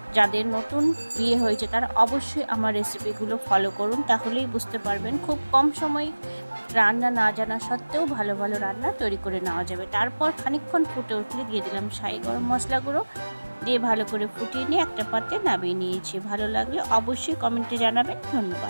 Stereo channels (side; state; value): both; inverted; correlation -1.00